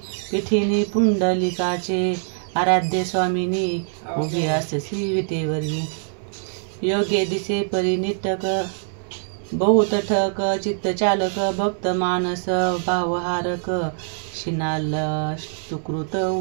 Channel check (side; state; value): left; silent; 63 dB below the other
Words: पुंडलिकाचे आराध्य स्वामिनी उभी अससी विटेवरी. योगे दिसे परिनिटक बहुतठक चित्तचालक भक्त मानस भावहारक शिनाल सुकृत